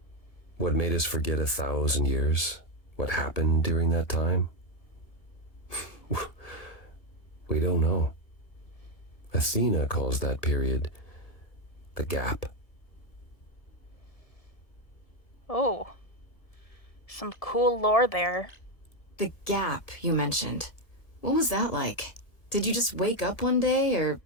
What made us forget 1,000 years? What happened during that time? We don't know. Athena calls that period the gap. Oh, some cool lore there. The gap you mentioned. What was that like? Did you just wake up one day, or...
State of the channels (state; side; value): late; right; 1.6 ms